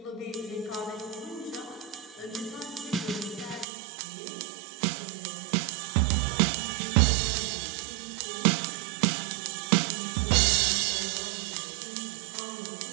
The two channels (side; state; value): left; drops out; at 3.7 s